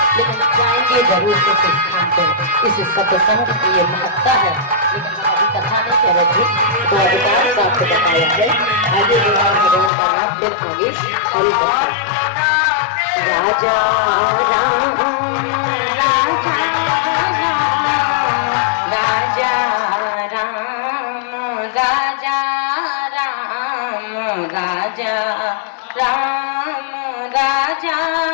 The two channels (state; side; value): drops out; right; at 9.9 s